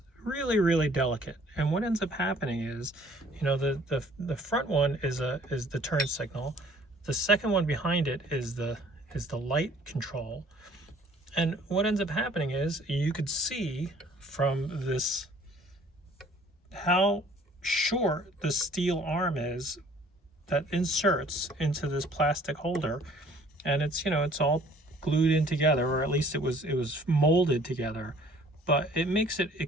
really delicate. And what ends up happening is, you know, the front one is the turn signal. The second one behind it is the light control. And what ends up happening is you could see from this how short the steel arm is that inserts into this plastic holder, and it's, you know, it's all glued in together, or at least it was molded together, but it makes it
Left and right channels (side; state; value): both; normal; correlation 0.56